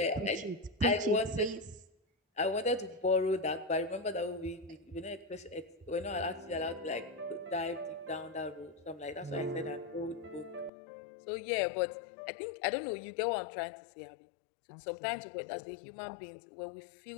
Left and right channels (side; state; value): right; drops out; at 10.7 s